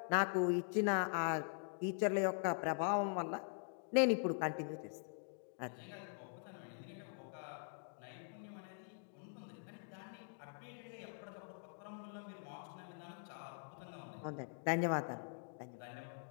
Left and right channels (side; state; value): right; silent; digital silence